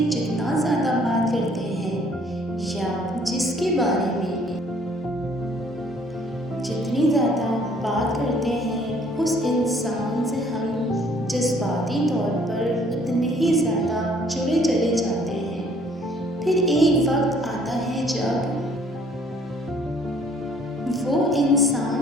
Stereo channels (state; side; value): normal; both; correlation 0.60